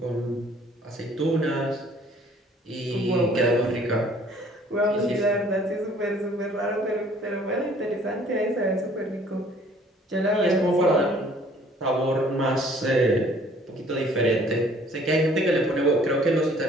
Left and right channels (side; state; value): both; normal; correlation 0.56